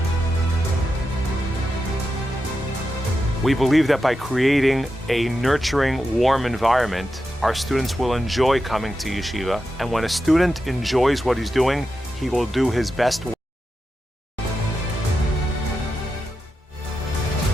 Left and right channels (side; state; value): both; normal; correlation 0.89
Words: We believe that by creating a nurturing, warm environment, our students will enjoy coming to yeshiva, and when a student enjoys what he's doing, he will do his best work.